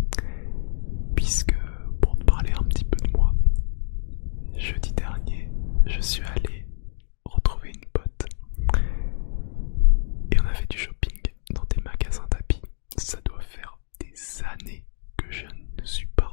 Puisque pour te parler un petit peu de moi, jeudi dernier, je suis allé retrouver une pote et on a fait du shopping dans des magasins d'habits. Ça doit faire des années que je ne suis pas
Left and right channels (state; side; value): silent; right; digital silence